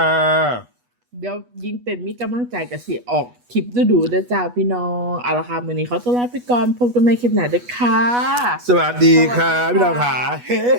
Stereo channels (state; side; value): late; left; 8.2 ms